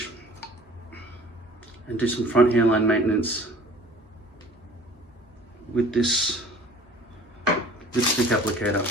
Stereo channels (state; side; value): normal; both; correlation 0.48